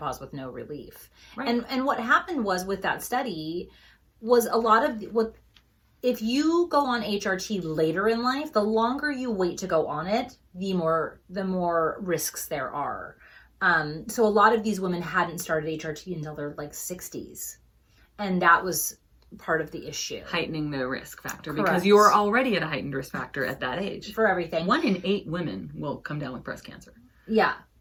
with no relief. Right. And what happened was with that study was a lot of if you go on HRT later in life, the longer you wait to go on it, the more risks there are. So a lot of these women hadn't started HRT until their like 60s. And that was part of the issue. Heightening the risk factor. Correct. Because you're already at a heightened risk factor at that age. For everything. 1 in 8 women will come down with breast cancer. Yeah.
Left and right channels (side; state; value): both; identical; correlation 1.00